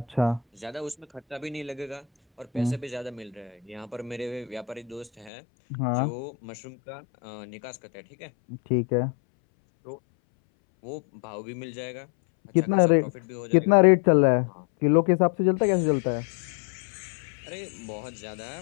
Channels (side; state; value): right; drops out; at 5.3 s